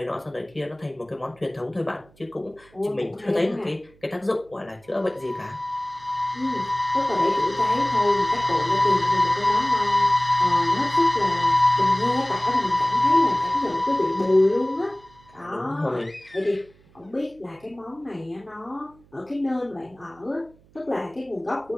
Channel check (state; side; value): noise; right; hum, 29 dB below the sound